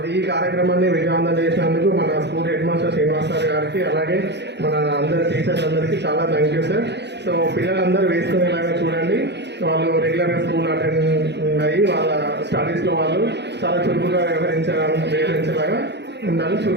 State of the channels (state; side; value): late; left; 0.50 ms